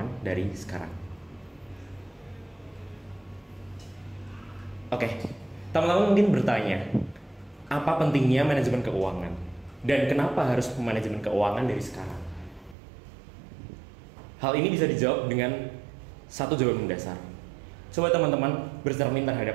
dari sekarang. Oke, teman-teman mungkin bertanya, apa pentingnya manajemen keuangan? Dan kenapa harus manajemen keuangan dari sekarang? Hal ini bisa dijawab dengan satu jawaban mendasar. Coba teman-teman bercermin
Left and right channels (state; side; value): drops out; left; at 12.8 s